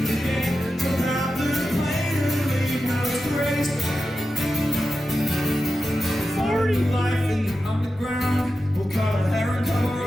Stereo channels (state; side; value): normal; both; correlation 0.91